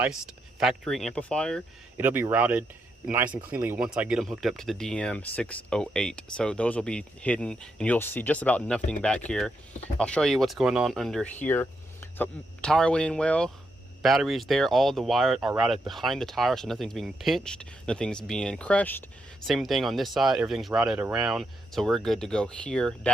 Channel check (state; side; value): normal; both; correlation 0.81